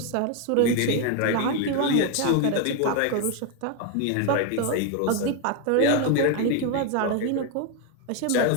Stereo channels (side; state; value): both; different; correlation 0.01